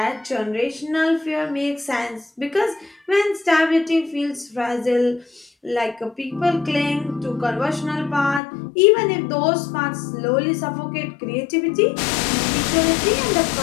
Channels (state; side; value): drops out; right; at 8.4 s